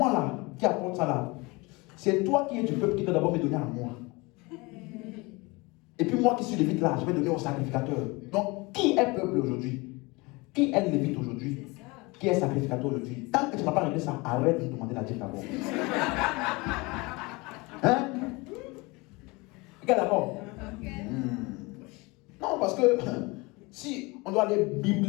là, qui apporte ça là, c'est toi qui es du peuple qui doit d'abord me donner à moi. Et puis moi qui suis lévite là, je vais donner au sacrificateur. Donc, qui est peuple aujourd'hui? Qui est lévite aujourd'hui? Qui est sacrificateur aujourd'hui? Tant que tu n'as pas réglé ça, arrête de me demander la dîme d'abord. Hein? Ok, d'accord? Non, parce que si on doit aller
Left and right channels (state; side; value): quieter; right; 25.2 dB